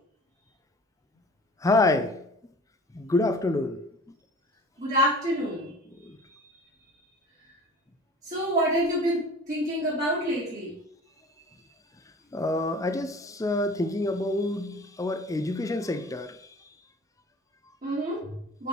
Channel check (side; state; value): both; normal; correlation 0.43